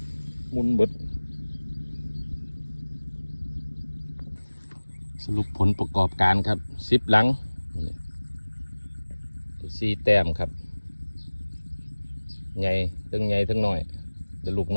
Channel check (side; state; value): both; inverted; correlation -1.00